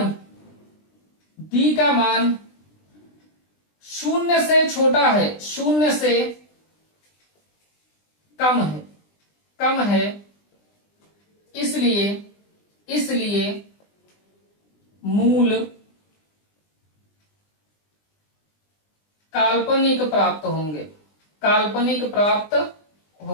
0 से छोटा है, 0 से कम है, इसलिए मूल काल्पनिक प्राप्त होंगे।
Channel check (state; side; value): late; right; 20 ms